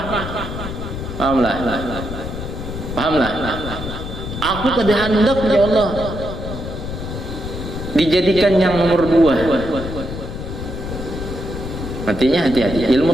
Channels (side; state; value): left; noise; rumble, 7 dB below the sound